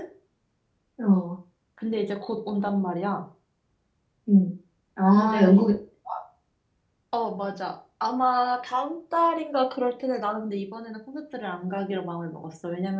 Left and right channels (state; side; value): identical; both; correlation 1.00